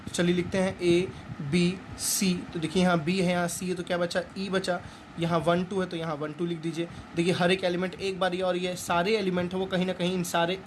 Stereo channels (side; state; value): both; identical; correlation 1.00